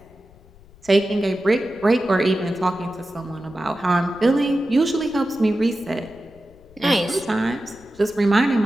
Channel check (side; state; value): left; noise; rumble, 25 dB below the sound